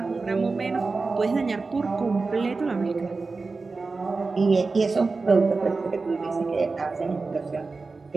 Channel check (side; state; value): left; quieter; 4.0 dB